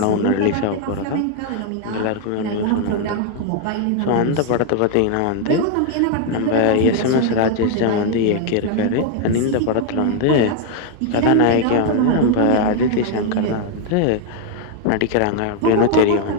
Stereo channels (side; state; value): both; different; correlation 0.00